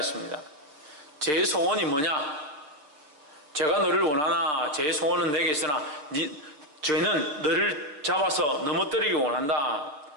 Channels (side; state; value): left; late; 6.7 ms